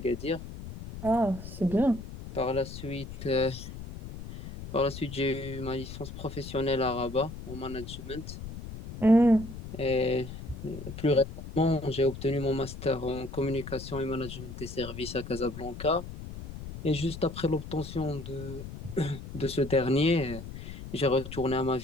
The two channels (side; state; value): left; noise; rumble, 11 dB below the sound